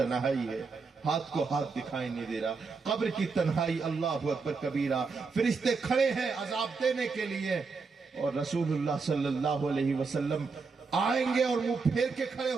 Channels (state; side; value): quieter; left; 4.6 dB